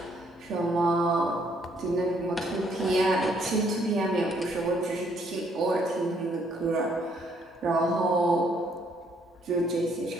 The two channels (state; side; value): normal; both; correlation 0.68